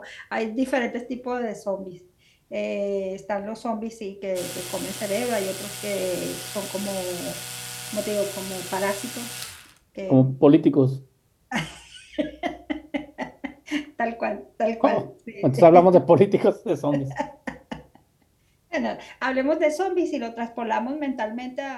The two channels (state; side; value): identical; both; correlation 1.00